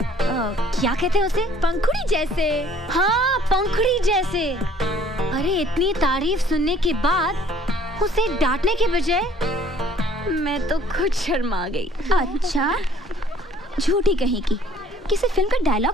क्या कहते हैं उसे? पंखुड़ी जैसे। हाँ, पंखुड़ी जैसे। अरे इतनी तारीफ सुनने के बाद उसे डांटने के बजाय मैं तो खुद शर्मा गई। अच्छा, झूठी कहीं की किसी फिल्म का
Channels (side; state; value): both; normal; correlation 0.56